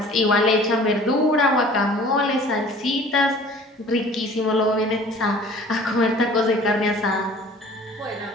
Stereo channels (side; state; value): both; normal; correlation 0.48